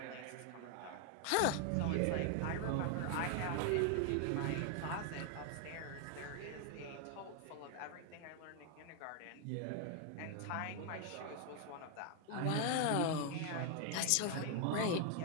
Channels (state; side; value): different; both; correlation 0.00